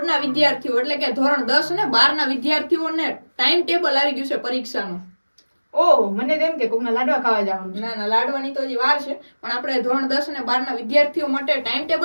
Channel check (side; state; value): both; inverted; correlation -1.00